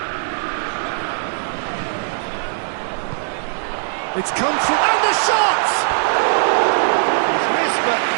It's come through, and the shot! He's missed, but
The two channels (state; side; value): silent; left; digital silence